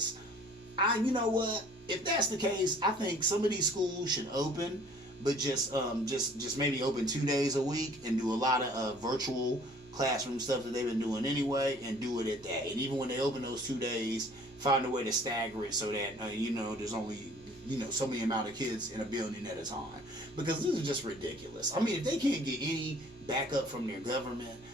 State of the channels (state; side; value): normal; both; correlation 0.53